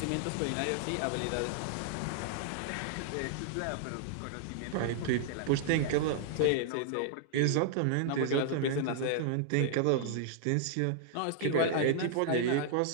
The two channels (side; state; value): both; different; correlation -0.01